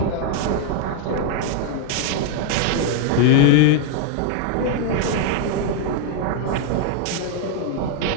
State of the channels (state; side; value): different; both; correlation 0.00